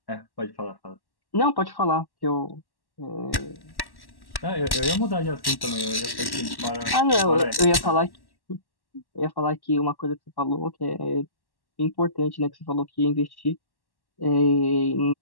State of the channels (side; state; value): right; late; 1.1 ms